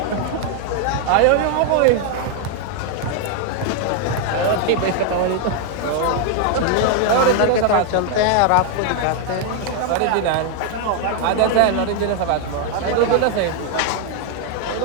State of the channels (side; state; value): both; different; correlation 0.00